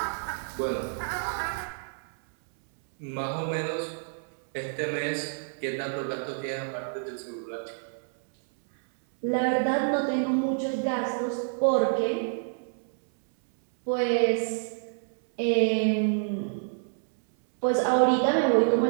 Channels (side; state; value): left; silent; 59 dB below the other